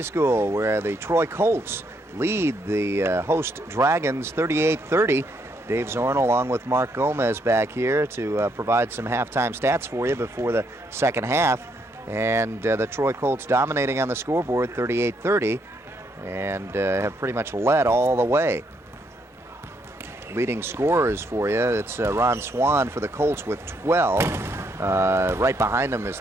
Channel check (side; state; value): both; normal; correlation 0.74